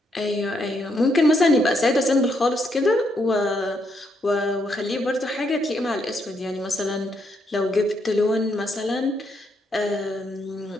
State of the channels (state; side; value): normal; both; correlation 0.76